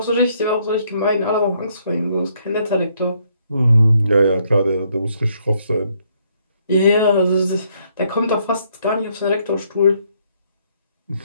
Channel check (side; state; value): both; inverted; correlation -0.70